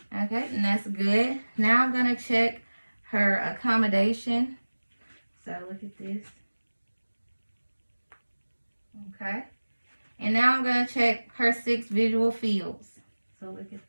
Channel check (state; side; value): inverted; both; correlation -1.00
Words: Okay, and that's good. Now I'm going to check her accommodation. So look at this. Okay. And now I'm going to check her 6 visual fields. So look at the